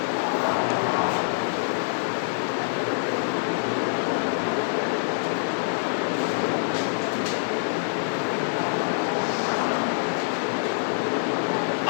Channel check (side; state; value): right; silent; digital silence